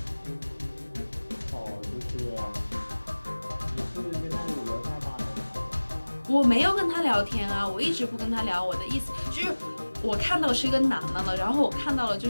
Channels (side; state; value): both; inverted; correlation -1.00